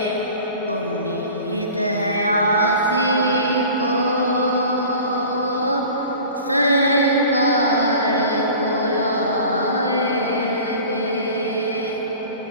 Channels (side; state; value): both; inverted; correlation -0.41